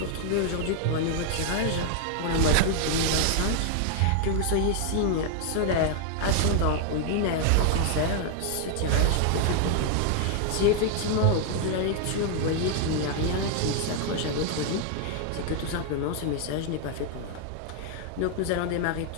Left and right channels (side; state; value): both; different; correlation 0.00